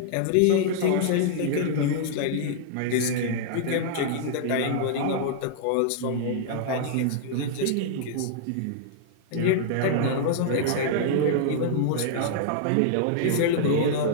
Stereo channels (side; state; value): both; different; correlation -0.01